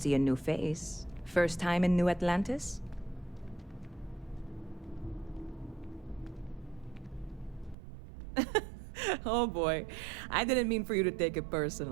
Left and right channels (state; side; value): drops out; left; at 7.8 s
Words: a new face. First time in New Atlantis? Oh boy, I didn't mean for you to take it